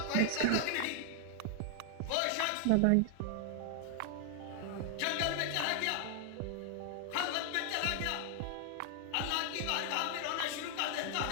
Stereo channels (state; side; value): different; both; correlation 0.00